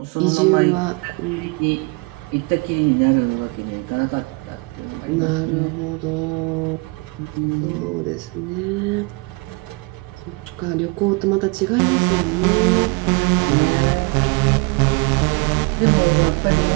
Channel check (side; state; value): left; quieter; 28.6 dB